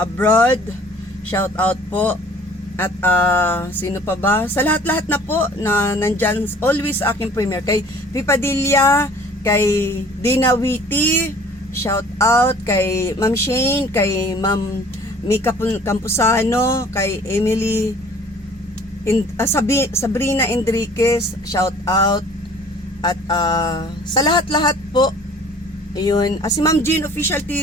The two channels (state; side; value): normal; both; correlation 0.51